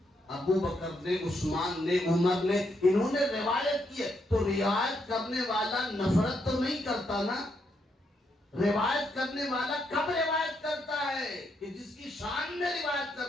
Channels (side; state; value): both; normal; correlation 0.78